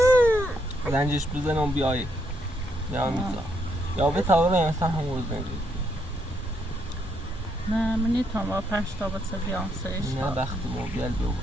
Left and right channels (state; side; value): normal; both; correlation 0.75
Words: زنجش بزنم بیایی یا به طبقه مثلا همون روز زنجش نه من نیتونم با 5 تا بسه بیام سریش نه وقت موبیل